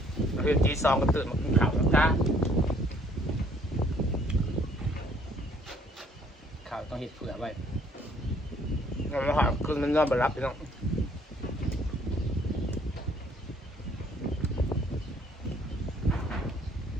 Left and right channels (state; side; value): normal; both; correlation 0.62